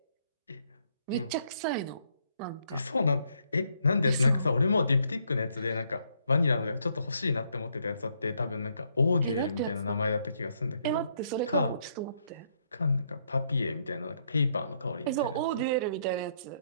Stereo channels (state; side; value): inverted; both; correlation -0.72